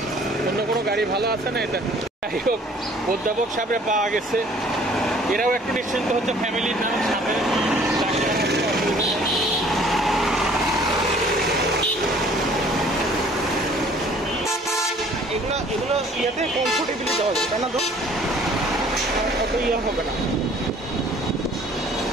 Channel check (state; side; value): normal; both; correlation 0.55